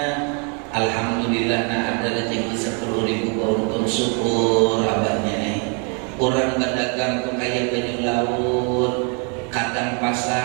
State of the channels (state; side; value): quieter; left; 37.4 dB